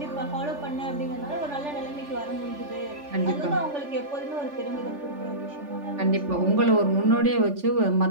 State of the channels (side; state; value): left; late; 3.4 ms